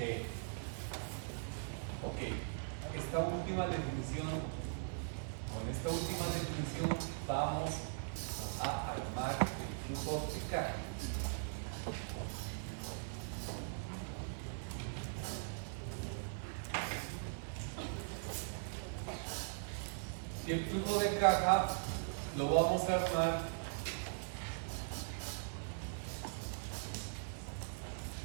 Ok. Esta última definición, con esta última definición vamos a armar el flujo de caja. Y el flujo de caja lo vamos a armar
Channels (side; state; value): left; silent; 51 dB below the other